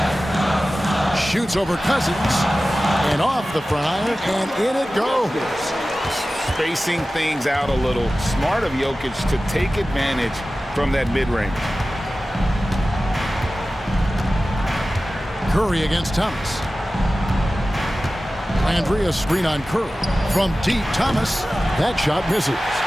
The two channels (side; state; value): both; normal; correlation 0.96